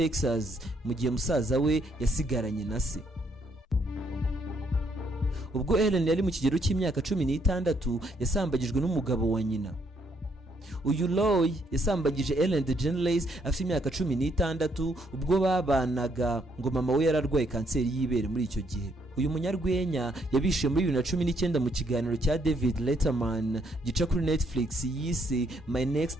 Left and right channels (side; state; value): both; normal; correlation 0.72